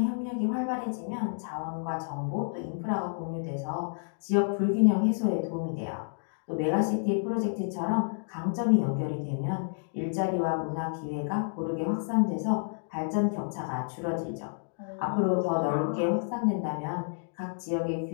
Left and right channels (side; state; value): right; silent; digital silence